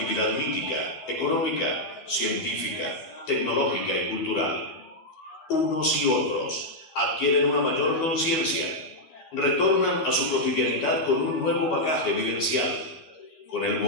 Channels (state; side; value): late; right; 13 ms